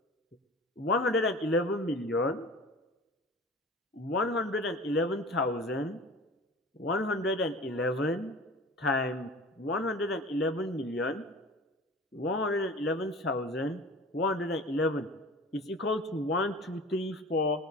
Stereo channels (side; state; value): both; normal; correlation 0.40